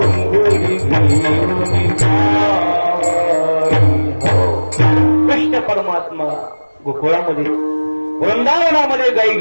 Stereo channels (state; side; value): inverted; both; correlation -1.00